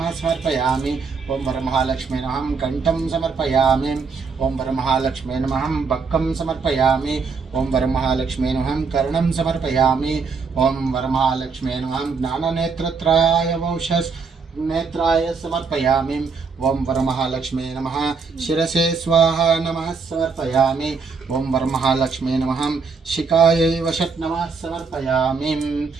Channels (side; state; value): left; quieter; 5.0 dB